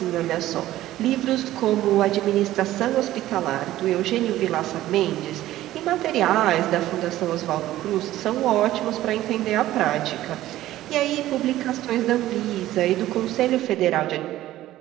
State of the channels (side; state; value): left; quieter; 14.7 dB